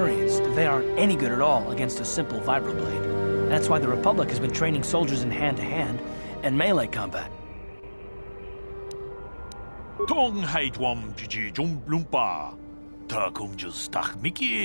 that they aren't any good at all against a simple vibroblade. That's why the Republic has been training soldiers in hand-to-hand and melee combat. Tong haitwam jiji jum lumpa. Ta kumjus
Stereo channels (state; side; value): inverted; both; correlation -1.00